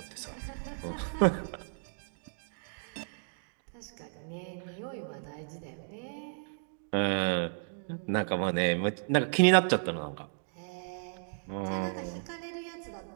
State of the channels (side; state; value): left; silent; digital silence